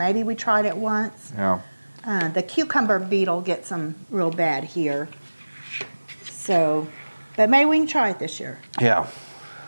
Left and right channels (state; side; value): inverted; both; correlation -1.00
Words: we tried it once. Yeah. The cucumber beetle gets them real bad here. So, but maybe we can try it this year. Yeah.